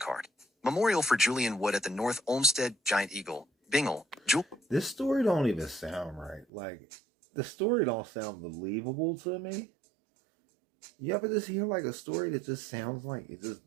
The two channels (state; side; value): drops out; left; at 6.5 s